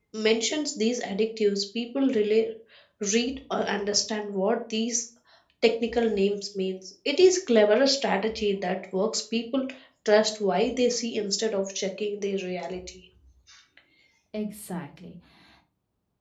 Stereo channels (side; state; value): both; identical; correlation 1.00